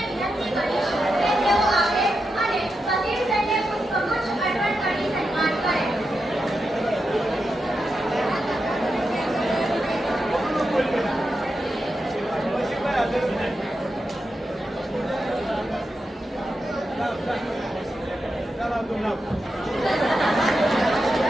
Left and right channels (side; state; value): both; normal; correlation 0.88